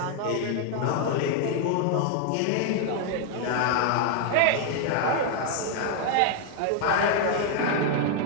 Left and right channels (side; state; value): both; different; correlation 0.00